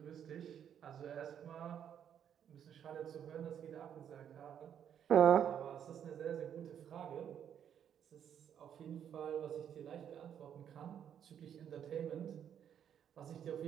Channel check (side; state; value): left; quieter; 9.0 dB